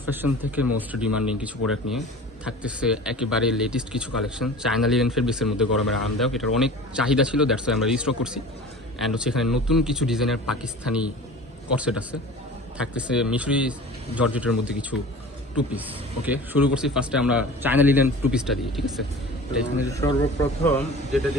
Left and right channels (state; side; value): normal; both; correlation 0.39